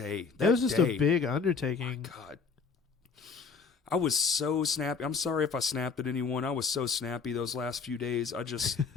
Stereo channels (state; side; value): quieter; right; 5.3 dB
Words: That was just a big undertaking. My God. I was so snappy. I'm sorry if I snapped at anyone. I was so snappy those last few days. I just,